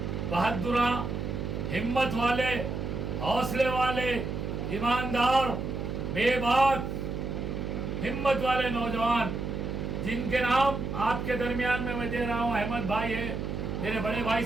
بہادراں، ہمت والے، حوصلے والے، ایماندار، بے باک ہمت والے نوجوان جن کے نام آپ کے درمیان میں دے رہا ہوں۔ احمد بھائی ہے، میرے بڑے بھائی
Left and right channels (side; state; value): right; noise; hum, 4 dB below the sound